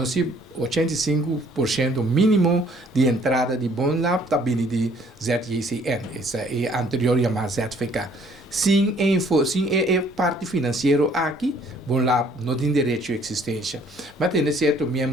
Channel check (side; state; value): both; normal; correlation 0.60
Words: 85% mínimo de entrada de bom lab está vindo de ZJCN, essa é a anterior chamada ZFK. Sem parte financeira aqui, bom lab não tem direito à existência. Mas tem certo